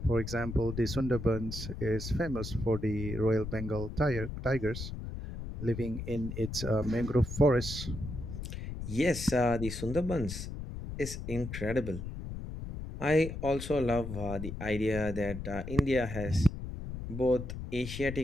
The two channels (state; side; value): noise; left; rumble, 7 dB below the sound